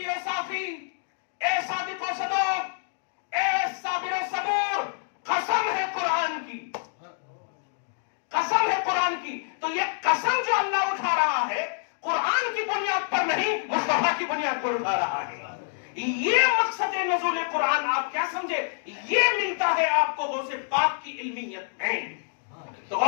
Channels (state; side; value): silent; right; digital silence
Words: و صافی، اے صادق و صدوق، اے صابر و صبور، قسم ہے قرآن کی، قسم ہے قرآن کی۔ تو یہ قسم جو اللہ اٹھا رہا ہے قرآن کی بنیاد پر نہیں، مصطفیٰ کی بنیاد پر اٹھا رہا ہے۔ یہ مقصد نزول قرآن آپ کیا سمجھے؟ یہ ملتا ہے آپ کو غوث پاک کی علمیت میں۔ تو